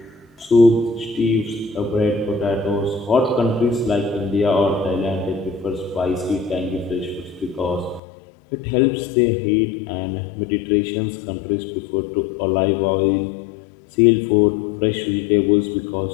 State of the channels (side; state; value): right; drops out; at 8.0 s